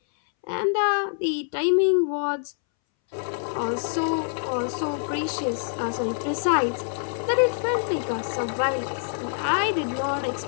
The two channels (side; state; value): right; silent; 61 dB below the other